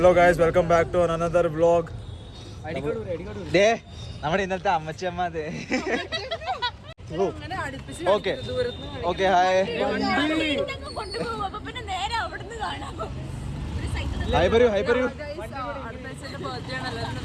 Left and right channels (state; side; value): identical; both; correlation 1.00